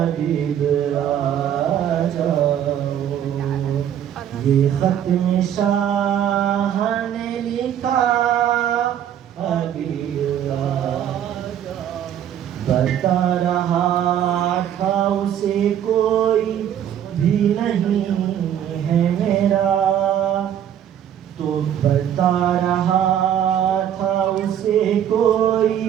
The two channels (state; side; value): quieter; left; 10.0 dB